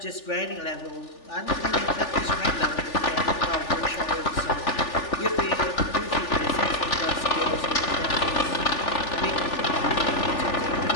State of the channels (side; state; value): right; late; 3.4 ms